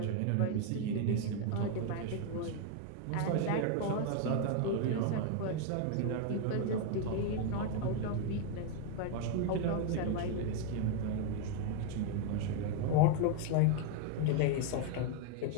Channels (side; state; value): both; different; correlation 0.01